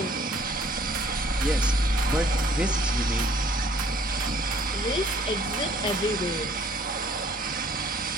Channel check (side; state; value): both; normal; correlation 0.58